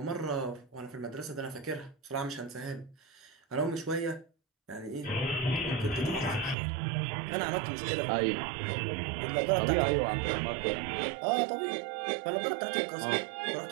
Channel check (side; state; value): left; drops out; at 6.6 s